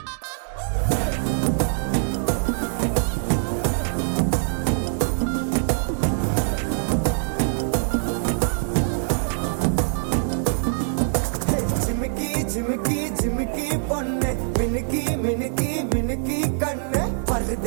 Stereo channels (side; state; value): left; silent; digital silence